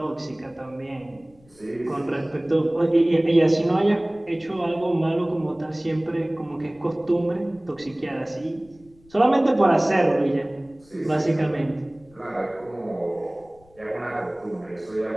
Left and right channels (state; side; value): noise; left; rumble, 29 dB below the sound